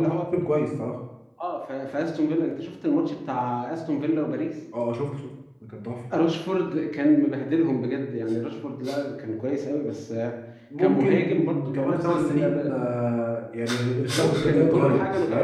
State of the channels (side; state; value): both; identical; correlation 1.00